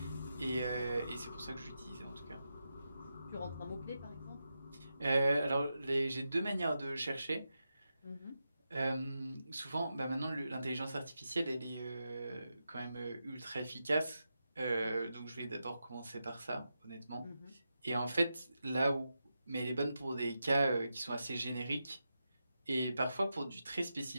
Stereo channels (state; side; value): inverted; both; correlation -0.88